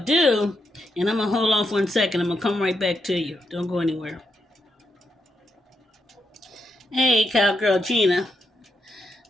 to do, and I'm going to hold off 1 second. I'm going to come right back to you. Don't go anywhere. Hey, Cowgirl Gina.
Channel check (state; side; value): normal; both; correlation 0.81